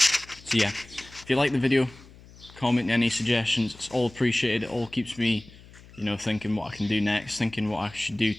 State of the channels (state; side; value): noise; left; hum, 22 dB below the sound